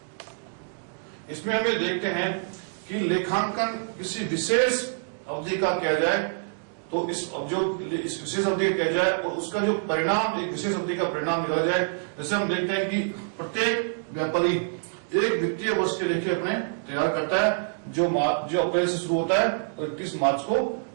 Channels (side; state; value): left; silent; digital silence